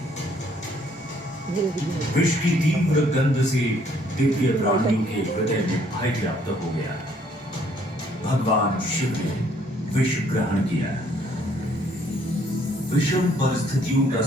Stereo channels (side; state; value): both; normal; correlation 0.64